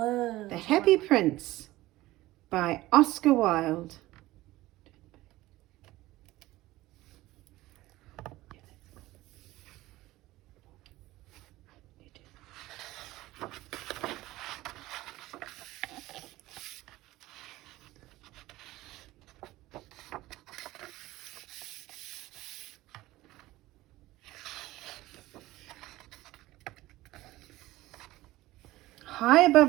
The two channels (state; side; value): quieter; left; 17.5 dB